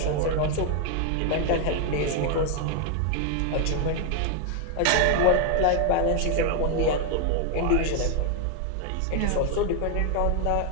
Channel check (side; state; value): both; different; correlation 0.01